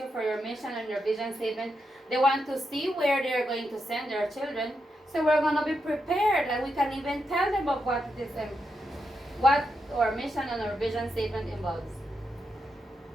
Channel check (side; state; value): both; normal; correlation 0.84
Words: for your mission and your vision statement, they want to see where they are going to send their children. So we're going to be prepared and we can even tell them of what it is and what our mission and our vision statement involves.